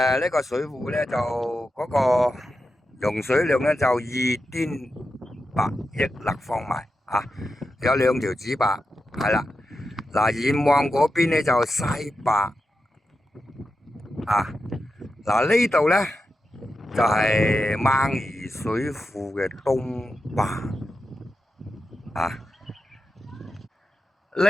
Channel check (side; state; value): both; normal; correlation 0.89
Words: 呢個水庫咧就嗰個用水量咧就2.8億立方米啊，有2條指壩，係啦。嗱，遠望嗰邊咧就西壩啊，嗱呢度咧就係掹宜水庫嘅東壩啊，